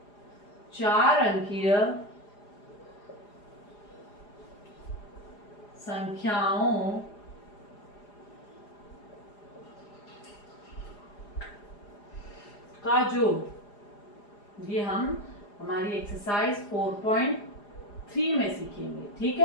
4 अंकीय संख्याओं का जोड़, ये हम हमारी एक्सरसाइज 4.3 में सीखेंगे। ठीक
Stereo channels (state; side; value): late; right; 4.9 ms